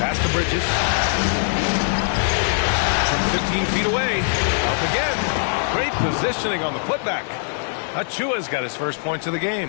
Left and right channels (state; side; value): silent; right; digital silence